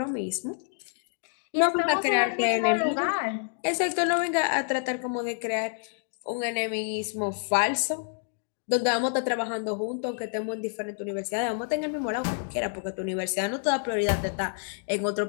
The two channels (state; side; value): silent; right; 59 dB below the other